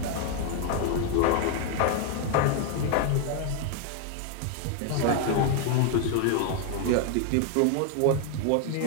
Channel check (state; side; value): different; both; correlation 0.01